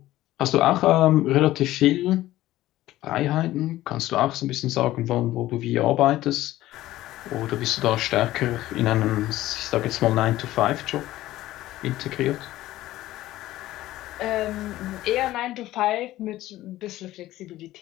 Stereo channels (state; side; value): quieter; right; 15.5 dB